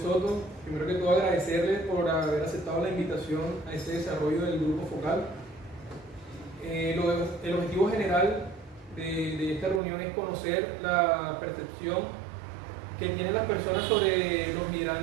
Primero que todo agradecerles por haber aceptado la invitación a este desarrollo del grupo focal. El objetivo general de esta reunión es conocer la percepción que tienen las personas sobre los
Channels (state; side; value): drops out; left; at 9.8 s